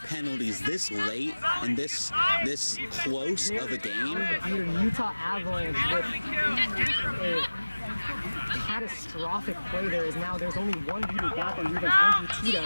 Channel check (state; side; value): inverted; both; correlation -1.00